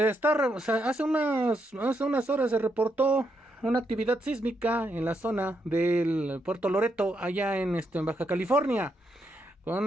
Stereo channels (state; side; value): normal; both; correlation 0.79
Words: unas horas se reportó una actividad sísmica en la zona del Puerto Loreto, allá en Baja California, con